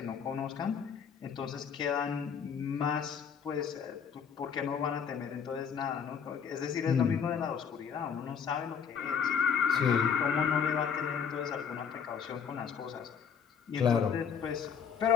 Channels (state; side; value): quieter; right; 7.1 dB